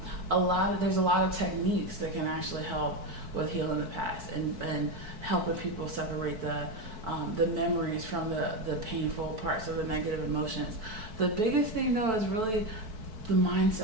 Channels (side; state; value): left; late; 4.6 ms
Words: a lot of techniques that can actually help with healing the past and helping people separate the memories from the painful parts of the negative emotions. The biggest thing though is really the